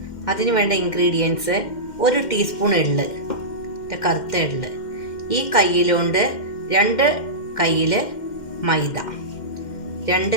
അതിന് വേണ്ട ഇൻഗ്രീഡിയൻസ്: 1 ടീസ്പൂൺ എള്ള്, കറുത്ത എള്ള്. ഈ കയ്യിലുണ്ട് 2 കയ്യിൽ മൈദ,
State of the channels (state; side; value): late; right; 2.1 ms